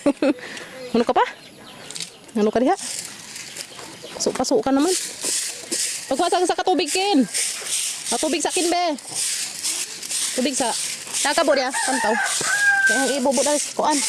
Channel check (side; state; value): both; identical; correlation 1.00